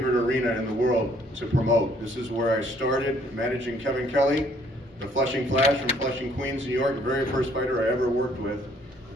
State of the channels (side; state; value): both; normal; correlation 0.63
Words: arena in the world to promote. This is where I started managing Kevin Kelly, the Flushing Flash from Flushing, Queens, New York, the very first fighter I ever worked with.